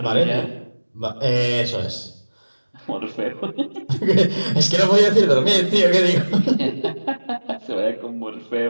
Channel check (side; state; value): both; inverted; correlation -1.00